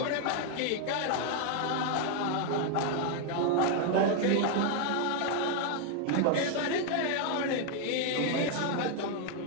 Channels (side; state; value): both; different; correlation 0.00